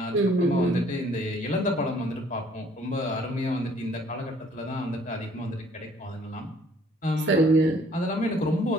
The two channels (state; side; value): normal; both; correlation 0.59